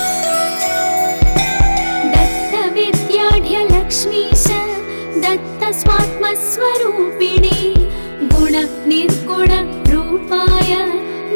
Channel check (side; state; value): both; inverted; correlation -1.00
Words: दत्तविद्याढ्यलक्ष्मीश दत्तस्वात्मस्वरूपिणे गुणनिर्गुण रूपाय